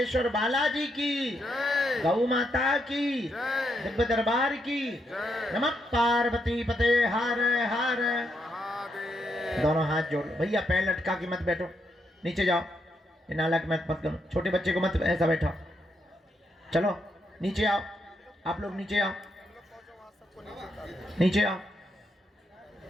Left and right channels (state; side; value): normal; both; correlation 0.79